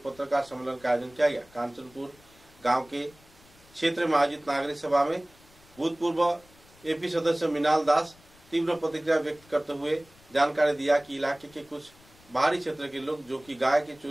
पत्रकार सम्मेलन का आयोजन किया गया। कांचनपुर गांव के क्षेत्र में आयोजित नागरिक सभा में भूतपूर्व एपी सदस्य मिनाल दास तीव्र प्रतिक्रिया व्यक्त करते हुए जानकारी दिया कि इलाके के कुछ बाहरी क्षेत्र के लोग जो कि गाय की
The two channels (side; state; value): left; noise; rumble, 27 dB below the sound